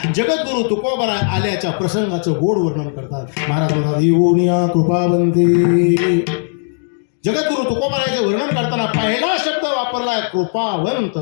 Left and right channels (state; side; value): silent; right; digital silence